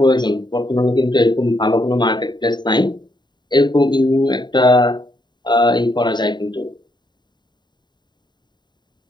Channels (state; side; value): late; right; 0.21 ms